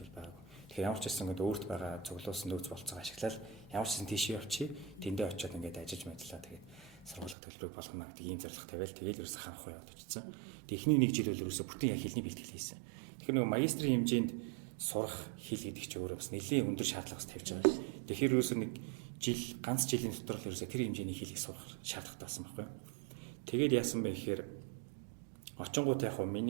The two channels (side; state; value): left; drops out; at 7.4 s